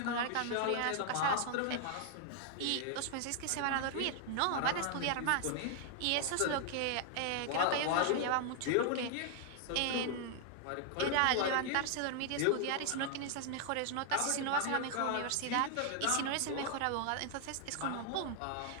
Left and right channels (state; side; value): different; both; correlation 0.00